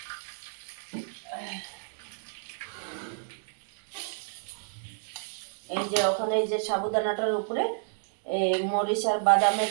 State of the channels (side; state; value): left; silent; digital silence